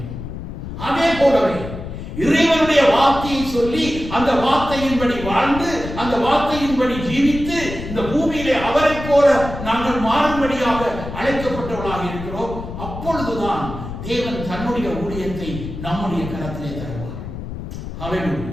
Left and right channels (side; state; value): left; noise; rumble, 9 dB below the sound